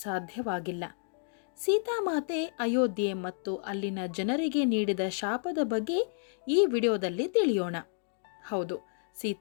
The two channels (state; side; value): silent; right; digital silence